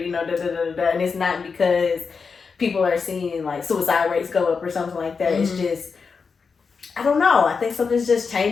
know, da-da-da-da-da. And it's not because people are seeing, like, suicide rates go up or something like that. It's just, I don't know. I think something's just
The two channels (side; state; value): right; quieter; 5.2 dB